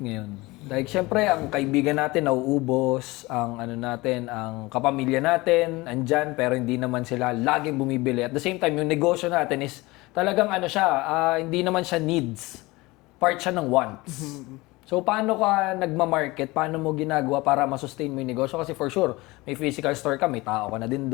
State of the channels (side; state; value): right; quieter; 21.7 dB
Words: Like, syempre, ang kaibigan natin nauubos, ang kapamilya natin, andyan, pero hindi naman sila laging bumibili. At the same time, yung negosyo natin is talagang hindi naman siya needs. Part siya ng wants. So, paano ka nagma-market? Paano mo ginagawa para masustain mo yung negosyo? Kasi for sure, may physical store ka, may tao ka na din